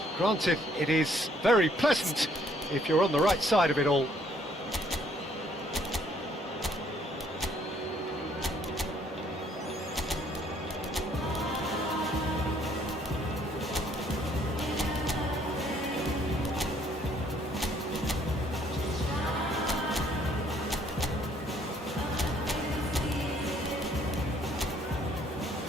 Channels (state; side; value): normal; both; correlation 0.64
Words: Granted, it is very pleasant if you're on the right side of it all.